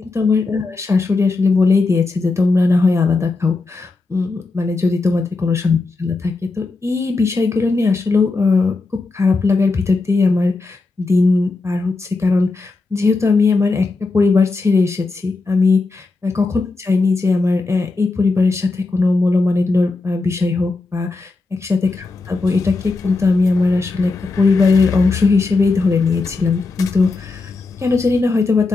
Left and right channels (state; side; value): quieter; right; 3.7 dB